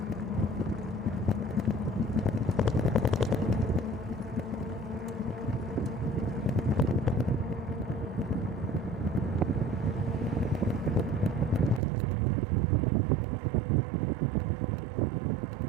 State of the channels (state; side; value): drops out; left; at 11.8 s